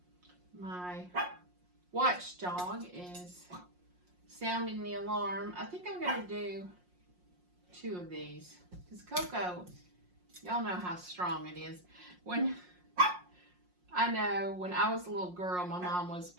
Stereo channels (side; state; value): left; late; 5.6 ms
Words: My watchdog is sounding the alarm. I think I'm going to do 2 of these because cocoa, y'all know how strong it is. I know when I was a little girl, my mom was